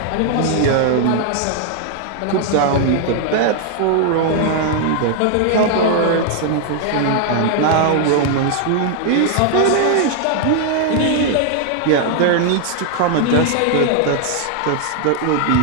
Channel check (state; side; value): different; both; correlation 0.00